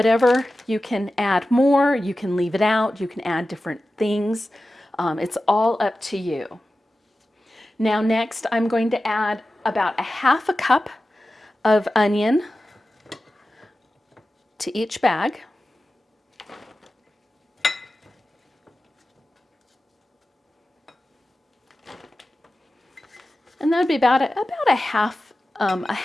you can add more, you can leave it out, you can add different things. It's all up to you. Now next, I'm going to add about a 1/2 cup of onion to each bag. And that would be about a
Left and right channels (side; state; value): both; normal; correlation 0.94